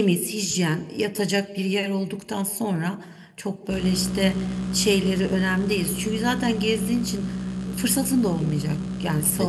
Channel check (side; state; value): both; identical; correlation 1.00